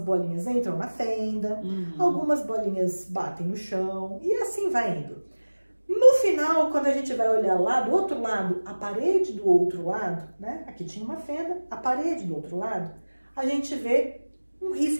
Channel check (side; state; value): both; inverted; correlation -1.00